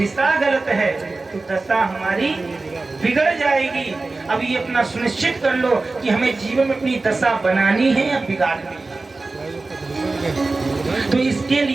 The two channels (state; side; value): quieter; left; 3.5 dB